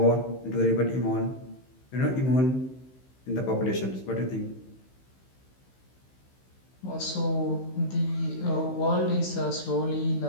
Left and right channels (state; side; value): late; right; 15 ms